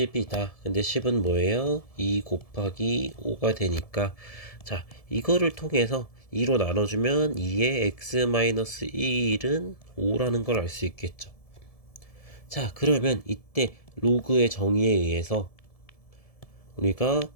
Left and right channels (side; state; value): right; late; 1.7 ms